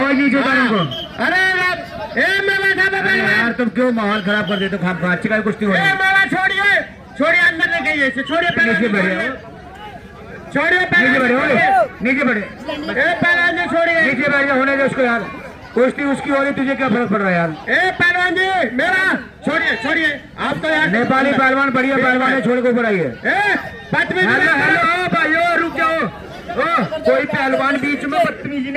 जी नीचे उतारो उनको। अरे यार तुम क्यों माहौल खराब कर देते हो? खाम खा अच्छी का कुश्ती हो रही है। छोड़िए छोड़िए, अंदर नहीं गई, छोड़िए नीचे बैठिए, छोड़िए नीचे बैठे, नीचे बैठे पहलवान जी, छोड़िए नीचे बैठ जाओ, होने दो उसको यार, कुश्ती उसकी हो रही, तुझे क्या फर्क पड़ रहा है यार? ए पहलवान जी मेरा छोड़िए, छोड़िए आप तो यार नेपाली पहलवान बढ़िया पहलवान है, छोड़ के ऊपर आइए। हेलो भाइयों रुक जाओ, कोई पहलवान बीच में बदतमीजी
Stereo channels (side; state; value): both; identical; correlation 1.00